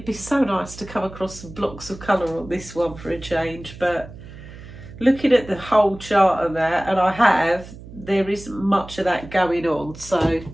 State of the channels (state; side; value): noise; right; hum, 16 dB below the sound